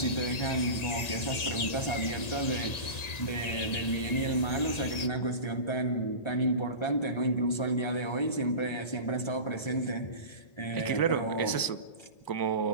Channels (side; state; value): right; late; 1.9 ms